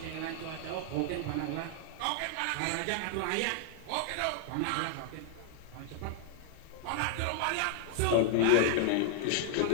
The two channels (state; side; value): different; both; correlation 0.00